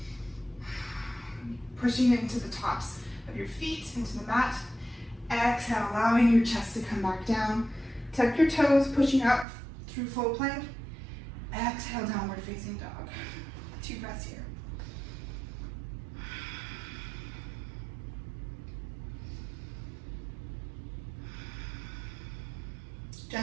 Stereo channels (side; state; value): left; drops out; at 9.5 s